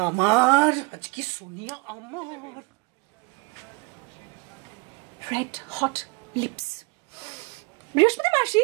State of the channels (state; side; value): quieter; left; 28.9 dB